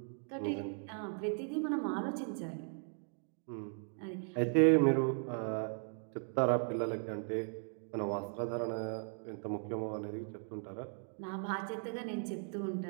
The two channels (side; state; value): left; silent; 53 dB below the other